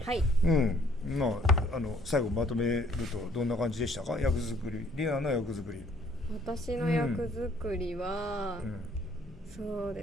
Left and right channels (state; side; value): normal; both; correlation 0.62